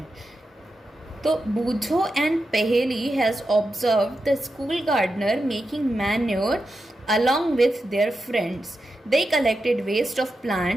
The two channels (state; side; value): normal; both; correlation 0.89